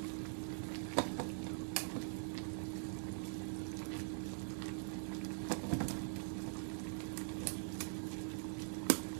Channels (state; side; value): silent; left; digital silence